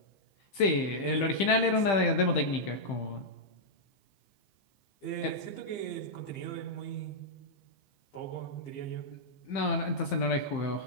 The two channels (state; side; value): late; right; 15 ms